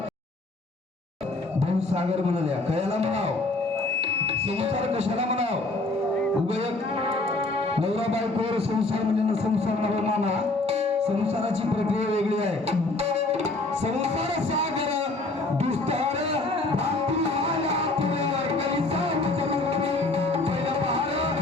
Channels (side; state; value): right; quieter; 3.0 dB